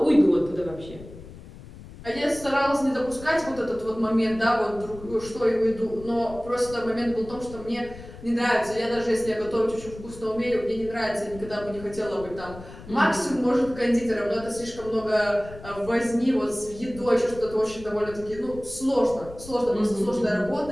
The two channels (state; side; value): noise; left; rumble, 16 dB below the sound